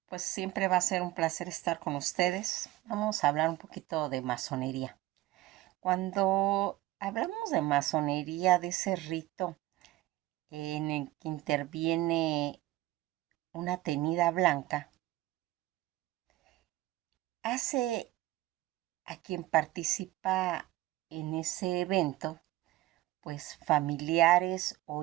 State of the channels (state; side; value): quieter; left; 16.7 dB